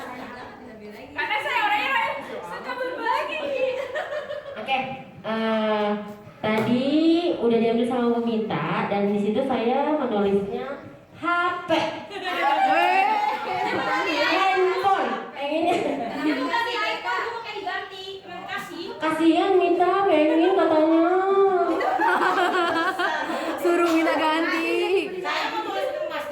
Karena saya orangnya suka berbagi. Oke, tadi udah diambil sama Bu Mita dan di situ saya menulisnya HP, handphone. Pengennya kasihan Mita pengen katanya. Suruh minta ganti. Saya mau tulis ke Mas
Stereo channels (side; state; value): both; identical; correlation 1.00